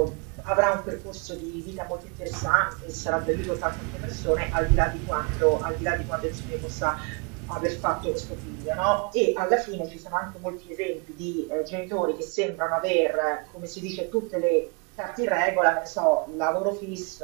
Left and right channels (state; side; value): quieter; left; 33.7 dB